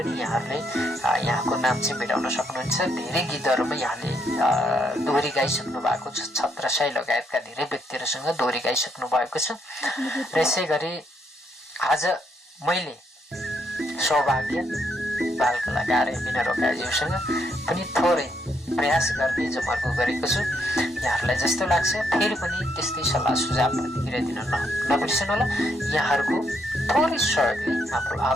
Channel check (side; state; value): both; normal; correlation 0.74